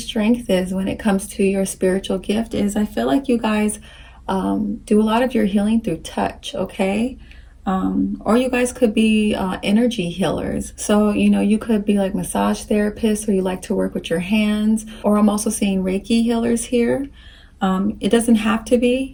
is when it comes to your spiritual gift, is I feel like you guys do a lot of your healing through touch, okay? Or you guys could be energy healers. So, you know, you could be like massage therapists, or you like to work with your hands, or I'm also seeing Reiki healers here. It doesn't have to be,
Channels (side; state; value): both; identical; correlation 1.00